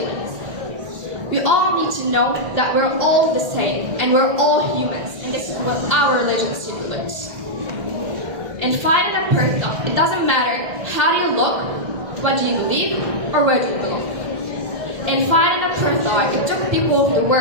We all need to know that we're all the same and we're all humans, and this is what our religion stipulates. And fighting a person, it doesn't matter how do you look, what do you believe, or where do you belong. In fighting a apartheid, it took people of the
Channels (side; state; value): left; late; 1.6 ms